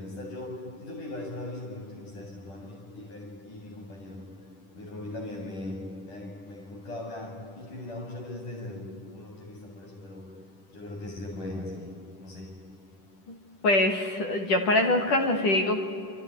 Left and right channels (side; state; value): right; late; 10 ms